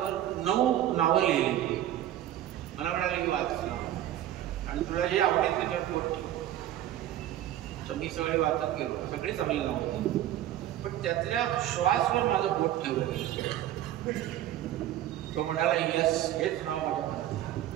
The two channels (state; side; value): quieter; left; 12.6 dB